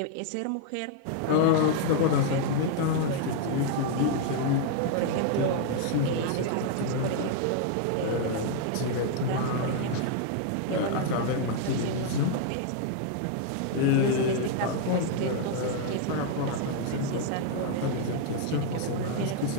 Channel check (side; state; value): both; different; correlation 0.00